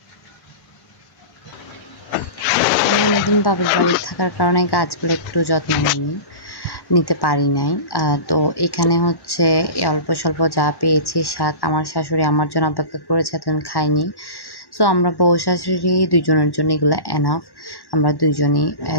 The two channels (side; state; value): right; late; 1.1 ms